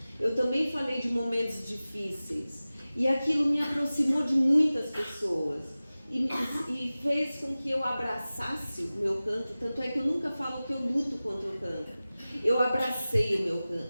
Eu também falei de momentos difíceis. E aquilo me aproximou de muitas pessoas. E fez com que eu abraçasse o meu cancro. Tanto é que eu nunca falo que eu luto contra o cancro. Eu abracei o meu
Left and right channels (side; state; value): both; inverted; correlation -0.97